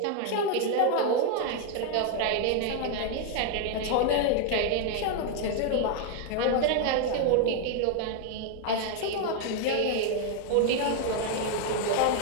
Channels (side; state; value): both; different; correlation 0.00